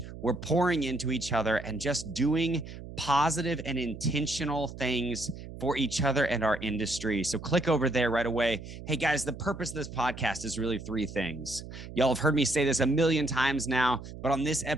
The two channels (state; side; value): noise; right; hum, 12 dB below the sound